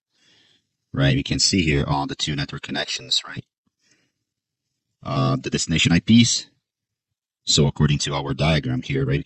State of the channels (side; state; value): both; identical; correlation 1.00